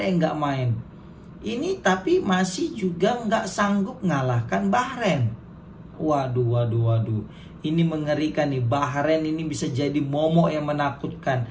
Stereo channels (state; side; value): identical; both; correlation 1.00